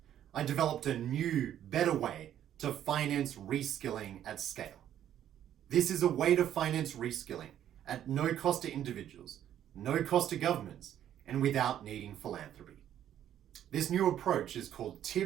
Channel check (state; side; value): quieter; left; 10.8 dB